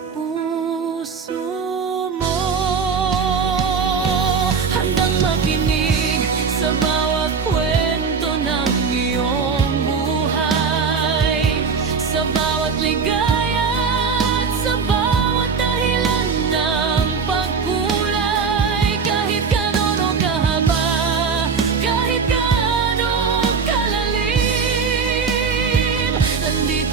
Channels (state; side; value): quieter; left; 5.6 dB